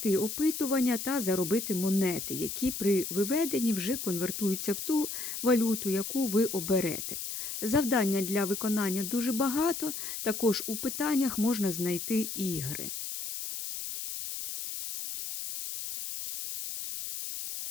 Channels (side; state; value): left; noise; hiss, 6 dB below the sound